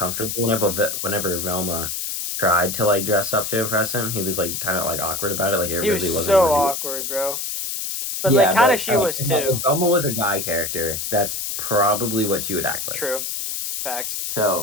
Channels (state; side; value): noise; left; hiss, 4 dB below the sound